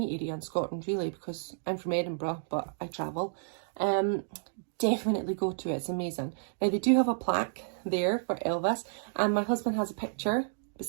area in Scotland really, because I'm from Edinburgh, but I travel, definitely go to it. It's amazing. Now they do have a plaque there for Elvis, and my husband has a picture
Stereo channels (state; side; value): silent; left; digital silence